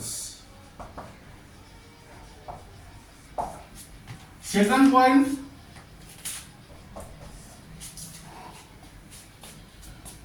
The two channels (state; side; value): identical; both; correlation 1.00